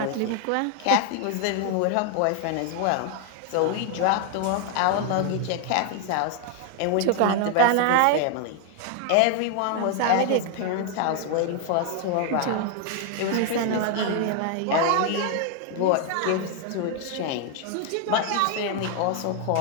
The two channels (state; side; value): different; both; correlation 0.00